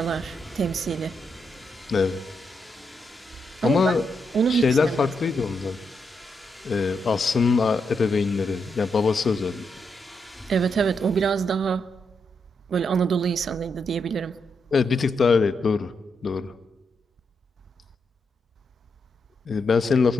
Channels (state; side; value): normal; both; correlation 0.82